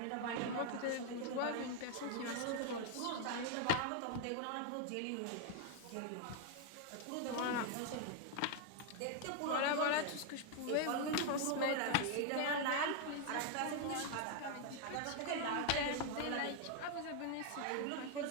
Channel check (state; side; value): different; both; correlation 0.00